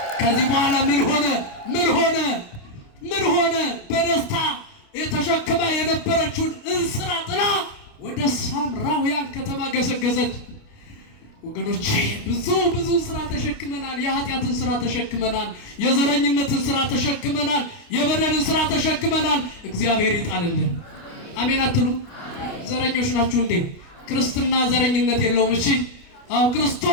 ከዚህ በኋላ ምን ሆነ? በደስታ የተሸክማ የነበረችውን እንስራ ጥላ ወደ ሳምራውያን ከተማ ገሰገሰች። ወገኖቼ ብዙ ስራ ተሸክመናል። የኃጢአትን ስራ ተሸክመናል። የዘረኝነትን ስራ ተሸክመናል። የበደልን ስራ ተሸክመናል። እግዚአብሔር ይጣልልን። አሜን አትሉ? ዘረኞች ናችሁ እንዴ? ክርስትና ዘረኝነት የለውም። እሺ አው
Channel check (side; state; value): right; late; 28 ms